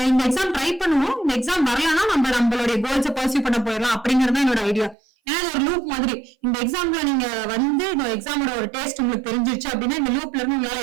இந்த எக்ஸாம் ட்ரை பண்ணுவோம், இந்த எக்ஸாம் வரலன்னா நம்மளுடைய கோல்ஸை பர்சியூ பண்ண போயிடலாம் அப்படிங்கறது என்னோட ஐடியா. ஏன்னா இது ஒரு லூப் மாதிரி. இந்த எக்ஸாம்ல நீங்க வந்து இந்த எக்ஸாமோட ஒரு டேஸ்ட் உங்களுக்கு தெரிஞ்சிருச்சு அப்படின்னா இந்த லூப்ல இருந்து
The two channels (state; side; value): drops out; left; at 5.0 s